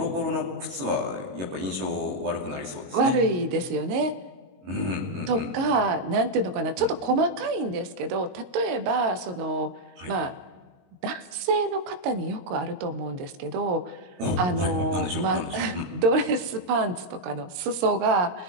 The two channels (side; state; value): left; late; 22 ms